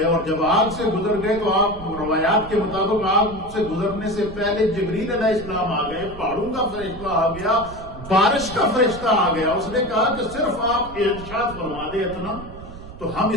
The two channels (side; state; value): right; noise; rumble, 14 dB below the sound